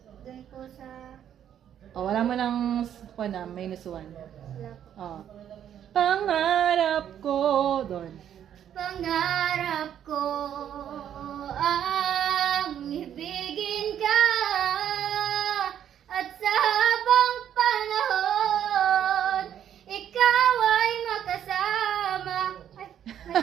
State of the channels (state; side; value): quieter; left; 9.9 dB